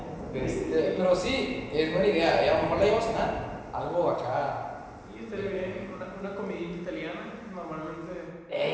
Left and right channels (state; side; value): identical; both; correlation 1.00